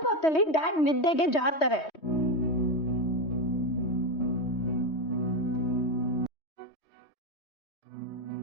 ಹೊತ್ತಲ್ಲಿ ಡ್ಯಾಡ್ ನಿದ್ದೆಗೆ ಜಾರ್ತಾರೆ.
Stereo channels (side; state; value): right; late; 3.2 ms